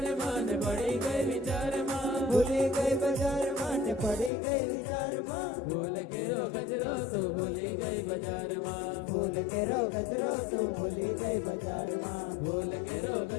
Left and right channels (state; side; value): drops out; right; at 4.3 s